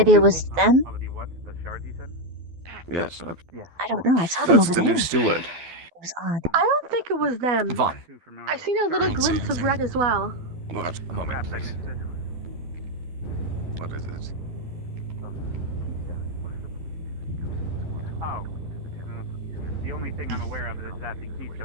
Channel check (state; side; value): late; left; 12 ms